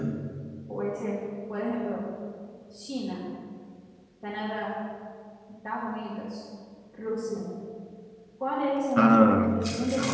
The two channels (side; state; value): both; identical; correlation 1.00